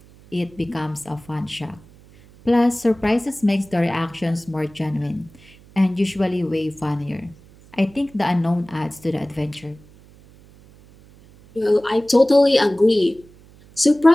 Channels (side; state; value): right; noise; hum, 25 dB below the sound